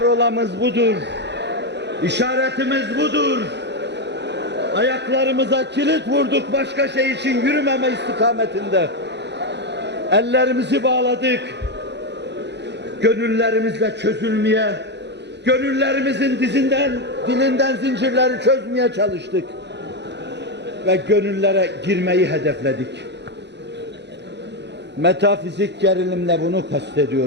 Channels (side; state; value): left; late; 0.50 ms